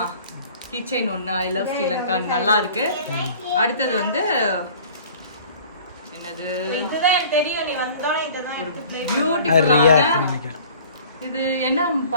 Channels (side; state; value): both; inverted; correlation -0.48